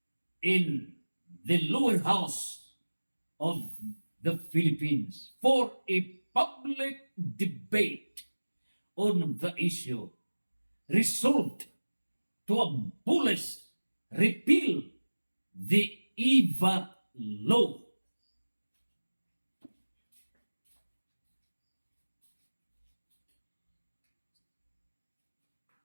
in the lower house of the Philippines for a public debate on the issue, resolved to abolish, repeal the EVA law.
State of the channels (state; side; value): inverted; both; correlation -1.00